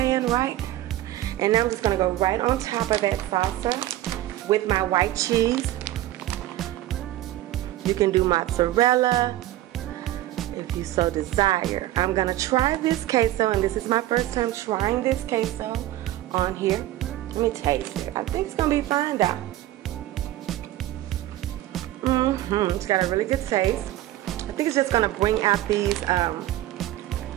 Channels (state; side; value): quieter; left; 15.0 dB